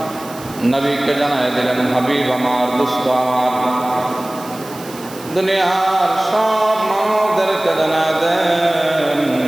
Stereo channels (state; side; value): noise; right; hiss, 17 dB below the sound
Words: নবীকে জানায় দিলেন, হাবিব আমার, দোস্ত আমার, দুনিয়ার সব মানবদেরকে জানায় দেন,